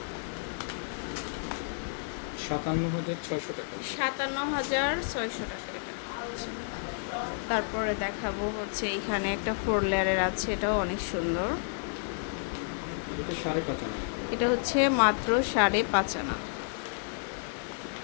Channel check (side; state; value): right; silent; digital silence